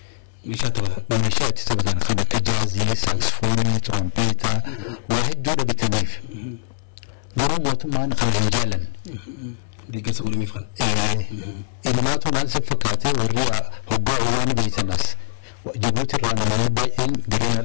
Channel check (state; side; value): silent; right; 62 dB below the other